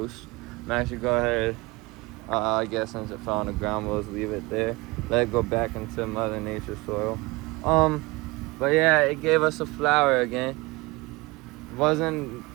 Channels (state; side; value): quieter; left; 23.3 dB